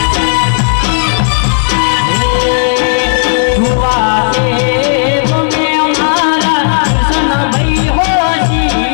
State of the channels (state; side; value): silent; right; digital silence